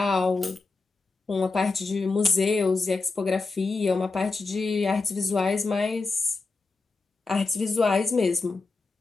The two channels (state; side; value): quieter; right; 3.9 dB